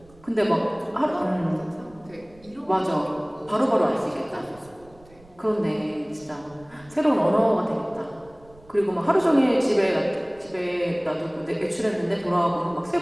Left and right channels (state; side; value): noise; right; rumble, 26 dB below the sound